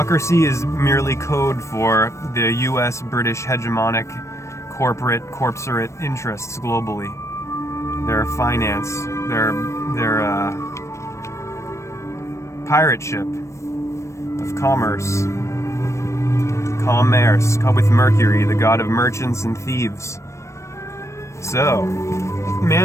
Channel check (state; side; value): late; right; 0.14 ms